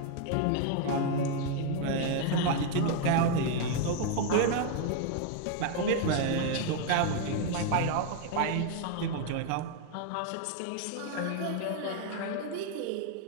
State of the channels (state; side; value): different; both; correlation 0.00